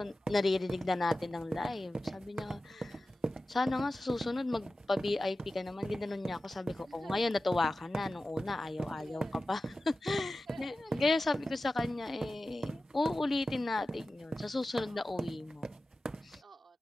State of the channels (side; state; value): both; normal; correlation 0.95